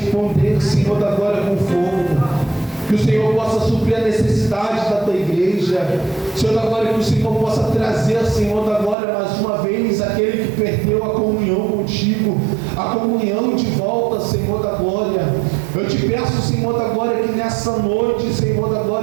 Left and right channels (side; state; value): left; drops out; at 9.0 s